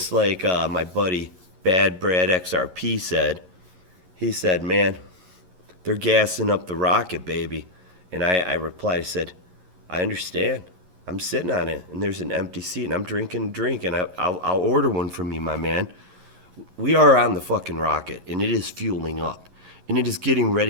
like my buddy Bad Brad XRP said, he said, man, they're gassing up the rocket, baby. And I replied, I said, I understand. I'm sitting on it, and there's an empty seat, and I'm drinking a drink, and I'll order one from you, my man. We are on the fucking rocket, and it is fueling up, and it is getting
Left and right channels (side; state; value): left; late; 11 ms